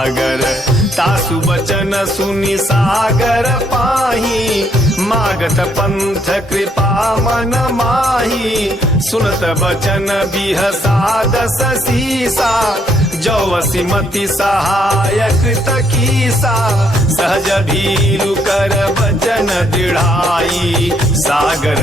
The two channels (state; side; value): normal; both; correlation 0.71